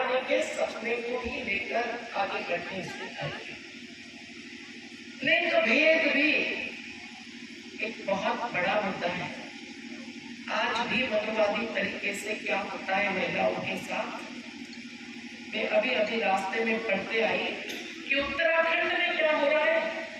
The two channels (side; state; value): both; identical; correlation 1.00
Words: के सपने को ही लेकर आगे बढ़ने से आई। लिंग भेद भी एक बहुत बड़ा मुद्दा है। आज भी मनोवादी तरीके से क्या होता है महिलाओं के साथ। मैं अभी अभी रास्ते में पढ़ते आई कि उत्तराखंड में क्या हो रहा है,